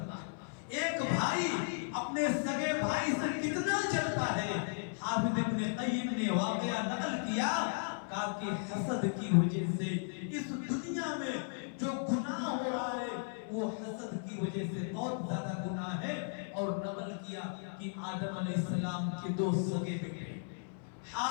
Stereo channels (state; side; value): silent; right; 54 dB below the other